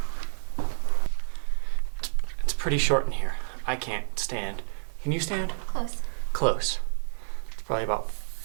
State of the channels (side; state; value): left; silent; digital silence